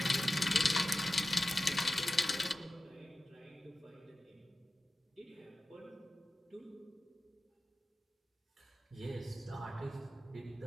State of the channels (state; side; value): normal; both; correlation 0.94